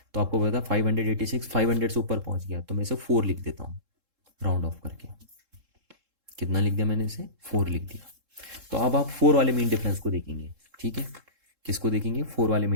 तो आपको पता है 586 500 से ऊपर पहुंच गया, तो मैं इसे 4 लिख देता हूँ राउंड ऑफ करके। कितना लिख दिया मैंने इसे, 4 लिख दिया। तो अब आप 4 वाले मीन डिफरेंस को देखेंगे। ठीक है, किसको देखेंगे, 4 वाले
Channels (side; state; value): left; late; 3.7 ms